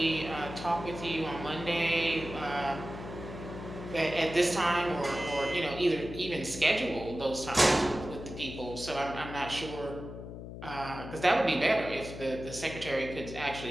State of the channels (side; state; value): left; noise; hum, 10 dB below the sound